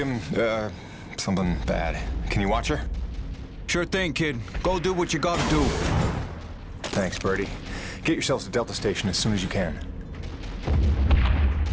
something bad. Can you watch her? Sure thing, kid. Go do what you gotta do. Thanks, Birdie. Get yourselves to Delta Station as soon as you can.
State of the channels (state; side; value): identical; both; correlation 1.00